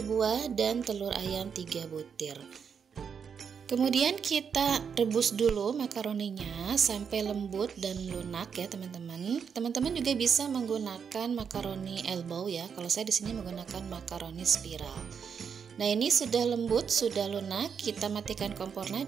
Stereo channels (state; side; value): quieter; left; 6.8 dB